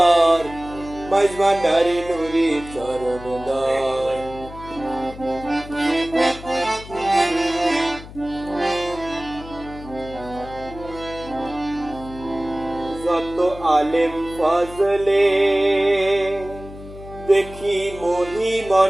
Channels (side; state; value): left; noise; hum, 15 dB below the sound